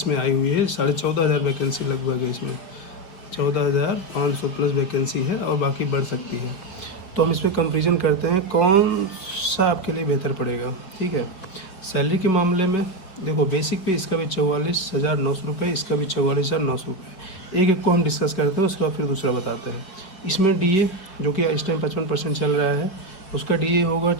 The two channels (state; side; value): late; right; 5.1 ms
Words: में आई हुई है। 14,500 वैकेंसी लगभग है इसमें, 14,500 प्लस वैकेंसी है और बाकी बढ़ सकती है। तो हम इस पर कंपेरिजन करते हैं कौन सा आपके लिए बेहतर पड़ेगा। ठीक है, सैलरी के मामले में देखो, बेसिक पे इसका भी 44,900 रुपये, इसका भी 44,900 रुपये। एक एक को हम डिस्कस करते हैं, उसके बाद फिर दूसरा बताते हैं। इसमें DA जो कि इस टाइम 55% चल रहा है, उसका DA होगा